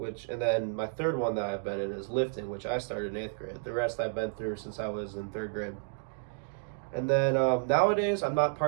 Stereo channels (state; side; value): silent; left; digital silence